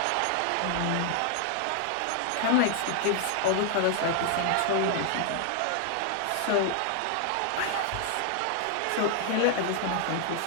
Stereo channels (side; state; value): both; different; correlation 0.00